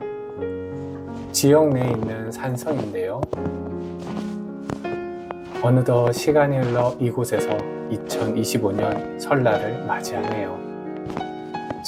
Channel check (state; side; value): identical; both; correlation 1.00